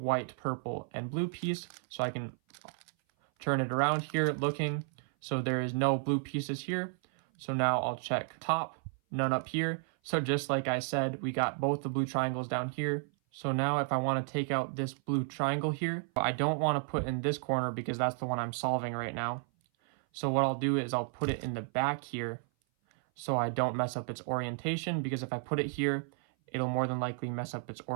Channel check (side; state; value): left; silent; 56 dB below the other